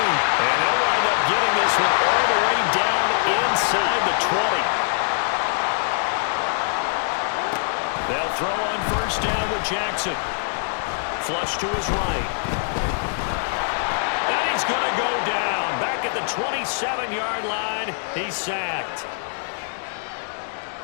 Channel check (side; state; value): right; silent; digital silence